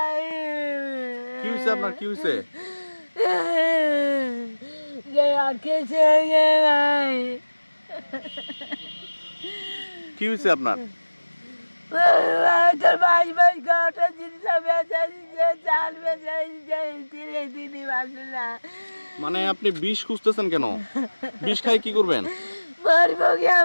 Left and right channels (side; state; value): both; inverted; correlation -1.00